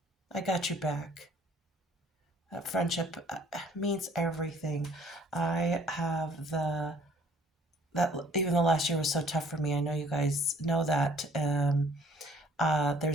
I got your back. That friendship means everything. I have that even the last year was so tough for me. I know you guys know that.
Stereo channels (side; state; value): both; normal; correlation 0.57